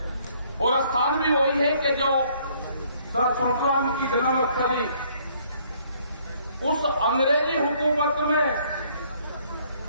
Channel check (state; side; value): inverted; both; correlation -0.64